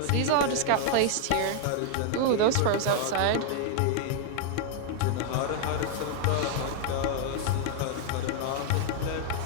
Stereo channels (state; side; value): different; both; correlation 0.00